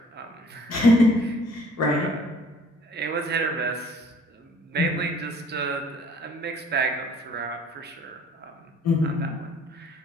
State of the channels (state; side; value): normal; both; correlation 0.56